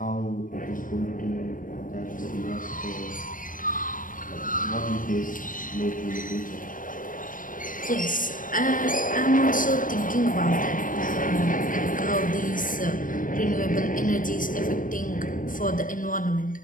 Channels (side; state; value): right; late; 0.39 ms